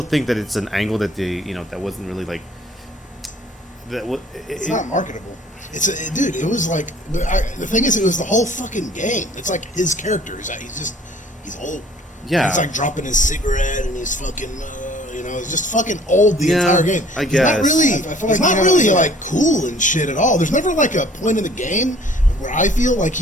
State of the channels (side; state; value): both; normal; correlation 0.55